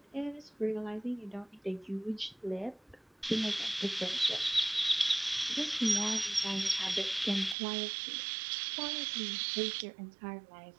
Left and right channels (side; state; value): left; drops out; at 7.6 s